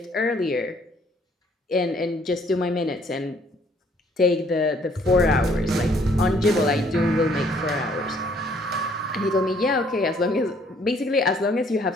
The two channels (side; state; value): both; normal; correlation 0.63